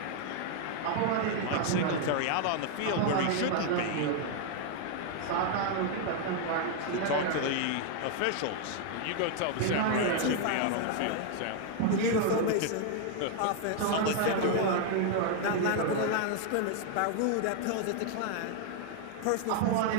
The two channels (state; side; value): different; both; correlation 0.00